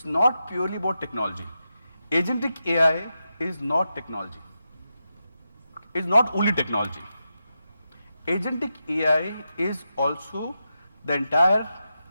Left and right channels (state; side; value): inverted; both; correlation -0.89